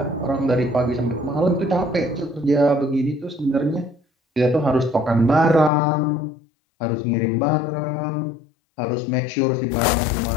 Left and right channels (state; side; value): drops out; right; at 5.7 s